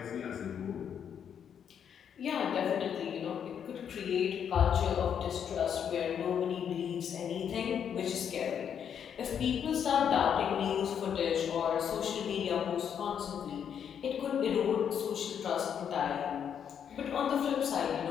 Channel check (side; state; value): right; quieter; 8.2 dB